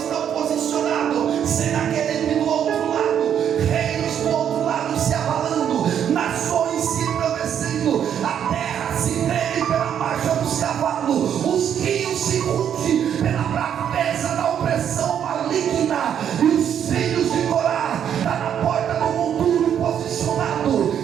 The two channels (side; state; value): left; quieter; 9.0 dB